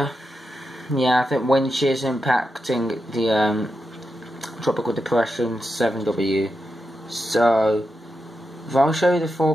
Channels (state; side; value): normal; both; correlation 0.87